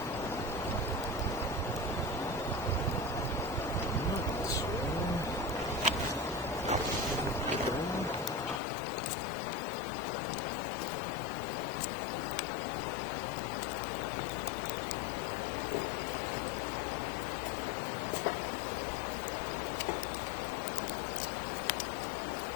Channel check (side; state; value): right; drops out; at 8.6 s